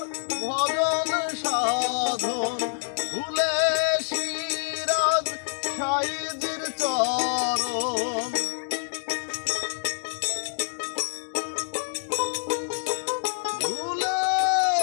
ভজন সাধন ভুলে সিরাজ সাইজির চরণ ভুলে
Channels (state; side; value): silent; right; 60 dB below the other